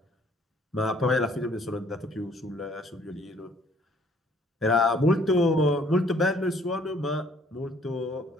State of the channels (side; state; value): both; normal; correlation 0.61